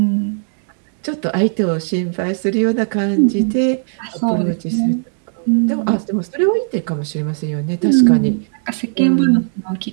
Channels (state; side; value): silent; left; digital silence